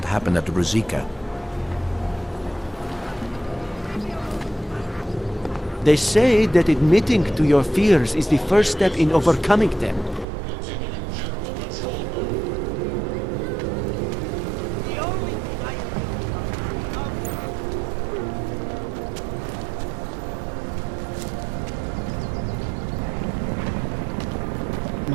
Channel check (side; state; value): left; drops out; at 10.2 s